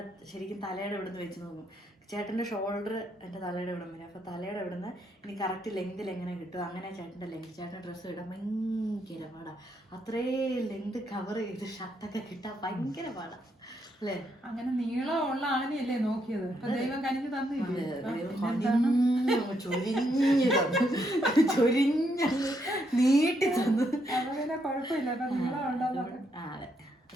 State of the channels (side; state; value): both; normal; correlation 0.77